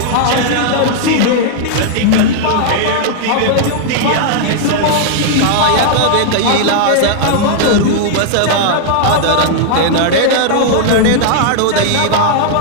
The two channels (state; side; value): different; both; correlation 0.00